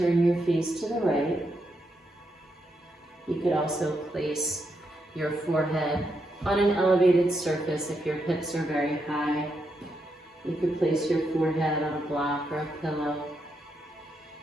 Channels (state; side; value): normal; both; correlation 0.82